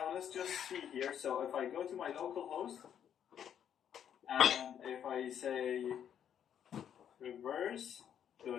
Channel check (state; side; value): quieter; right; 9.1 dB